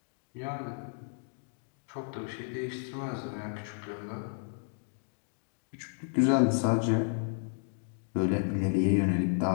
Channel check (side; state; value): right; silent; digital silence